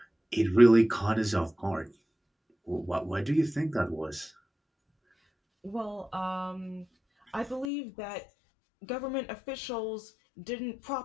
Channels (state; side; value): drops out; right; at 7.7 s